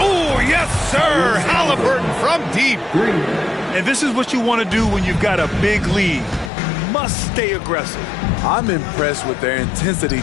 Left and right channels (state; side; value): drops out; right; at 6.5 s